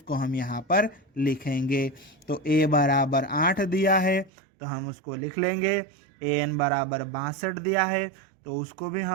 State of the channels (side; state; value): left; drops out; at 4.3 s